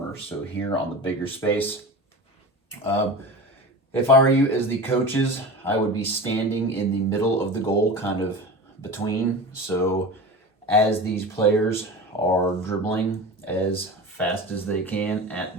So here on the bigger space, um, if I were you as the coaches, I would be standing in the middle of the goal, kind of between. So as these players are dribbling as fast as they can at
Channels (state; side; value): normal; both; correlation 0.31